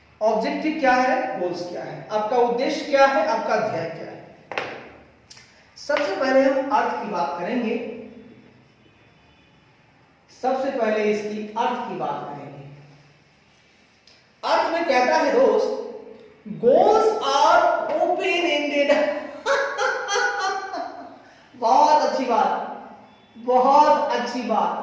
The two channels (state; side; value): identical; both; correlation 1.00